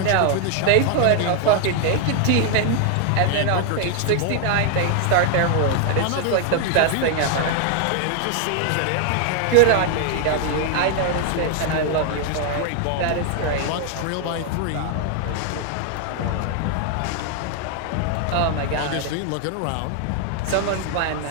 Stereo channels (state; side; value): different; both; correlation 0.00